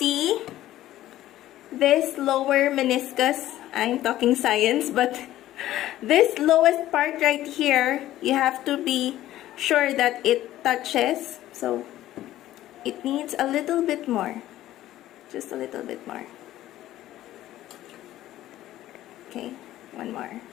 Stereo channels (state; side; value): quieter; right; 14.1 dB